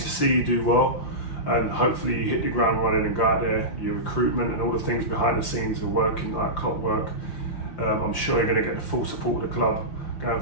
see you do well, and hopefully you hit the ground running and go out there. Your recruitment and all the things behind the scenes are working like clockwork. I'm sure you're going to get the full support of the club going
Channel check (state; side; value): late; right; 5.7 ms